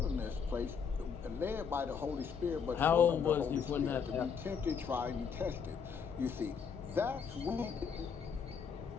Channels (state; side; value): quieter; right; 6.4 dB